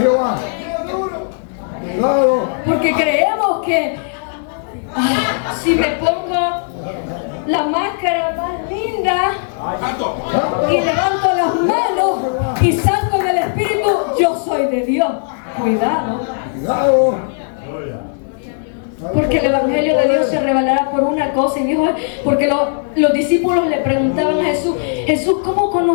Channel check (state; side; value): silent; right; 65 dB below the other